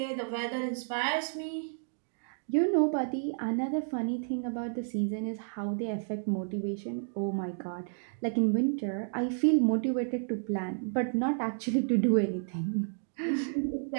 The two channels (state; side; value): silent; left; digital silence